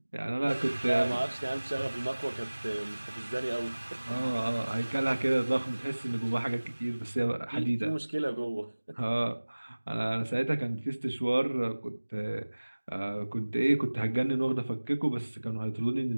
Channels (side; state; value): both; inverted; correlation -1.00